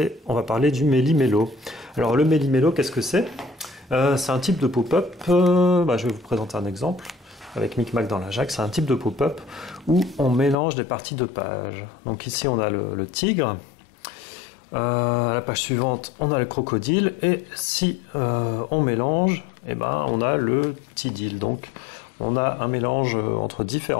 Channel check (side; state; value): right; drops out; at 10.6 s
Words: on va parler du méli-mélo. Alors le méli-mélo, qu'est-ce que c'est? C'est un type de pop-up, je vais vous présenter un exemple avec Micmac dans la Jacque. C'est un type de pop-up où on mélange des parties de pages. Donc ici on a le tigre, à la page suivante on a le crocodile et si on mélange, on a le tidil. Donc on a un mélange entre